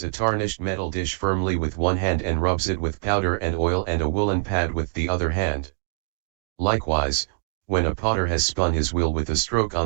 a tarnished metal dish firmly with one hand and rubs it with powder and oil and a woolen pad with the other hand. Likewise, when a potter has spun his wheel with a stroke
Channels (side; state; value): left; silent; digital silence